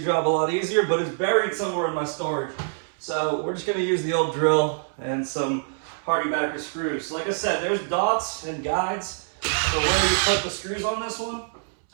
job a lot easier, but it's buried somewhere in my storage. So we're just gonna use the old drill and some hardibacker screws. So like I said, there's dots and guides for where you put the screws on this one.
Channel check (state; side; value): silent; left; 62 dB below the other